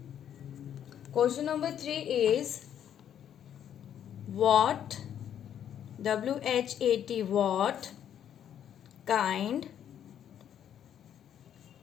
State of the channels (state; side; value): quieter; right; 9.7 dB